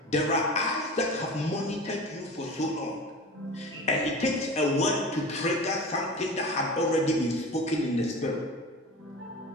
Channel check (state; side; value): normal; both; correlation 0.33